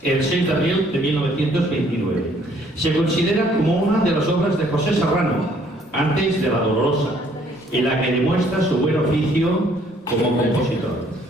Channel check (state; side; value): normal; both; correlation 0.63